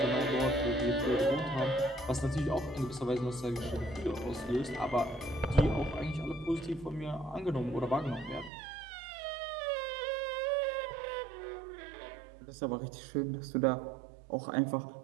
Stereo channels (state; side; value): drops out; left; at 8.5 s